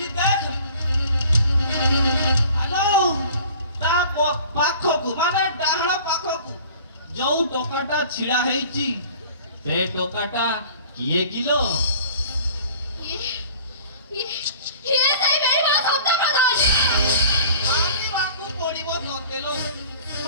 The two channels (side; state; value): both; inverted; correlation -0.47